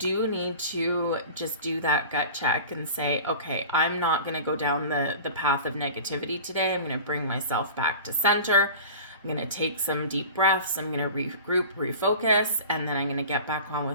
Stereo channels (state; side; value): inverted; both; correlation -0.37